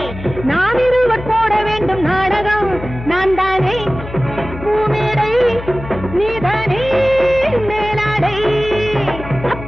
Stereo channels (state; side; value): noise; left; hum, 11 dB below the sound